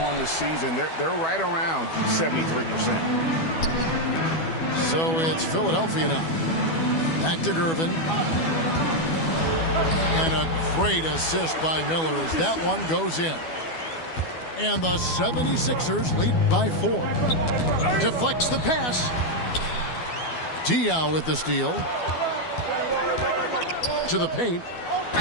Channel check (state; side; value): late; right; 12 ms